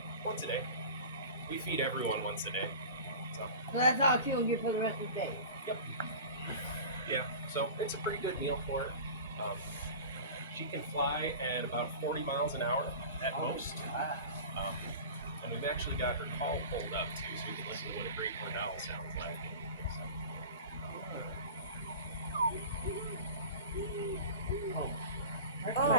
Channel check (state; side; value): inverted; both; correlation -0.36